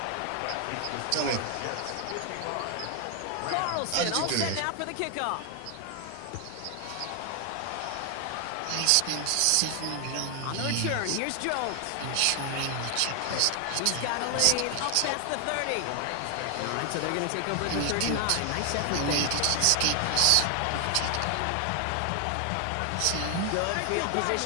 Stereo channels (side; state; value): both; different; correlation 0.00